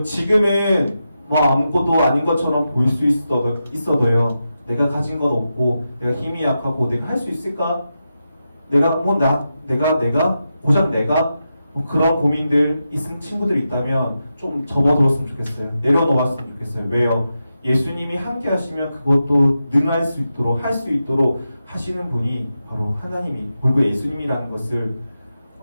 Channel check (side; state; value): both; inverted; correlation -0.89